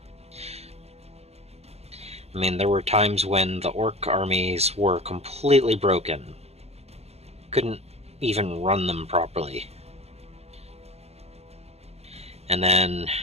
I mean, there were times when the Orc armies were completely broken. Couldn't even run them properly. And then,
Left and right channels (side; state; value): left; late; 0.30 ms